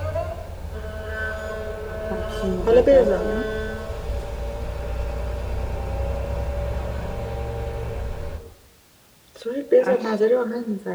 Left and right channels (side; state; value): both; identical; correlation 1.00